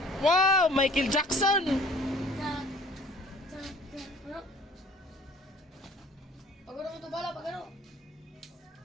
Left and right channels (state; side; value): normal; both; correlation 0.51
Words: Wow, Michael Jackson. Pagano mo ito bala, pagano?